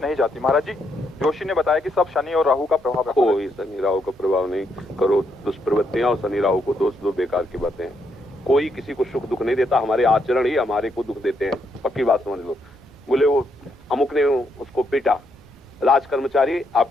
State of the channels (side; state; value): both; normal; correlation 0.77